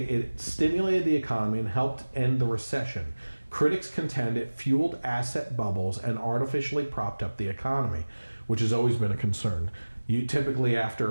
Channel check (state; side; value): inverted; both; correlation -1.00